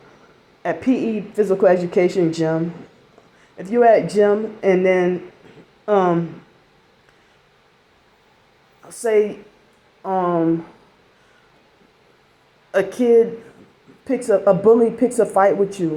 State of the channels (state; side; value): identical; both; correlation 1.00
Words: at PE, physical education gym, if you're at gym and then say a bully picks a fight with